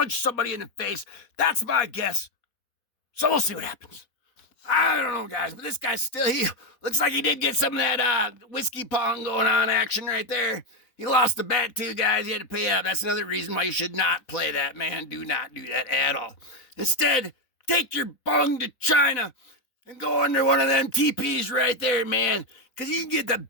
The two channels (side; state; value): right; late; 4.0 ms